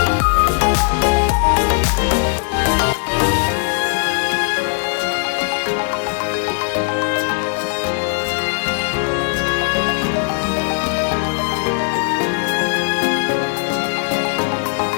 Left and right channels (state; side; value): quieter; right; 38.7 dB